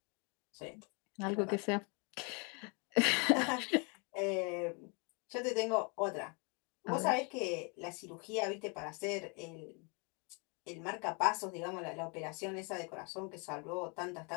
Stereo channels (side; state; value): right; quieter; 33.7 dB